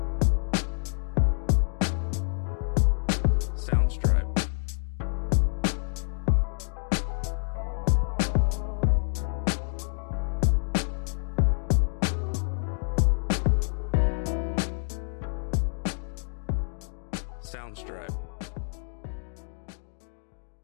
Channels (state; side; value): silent; right; digital silence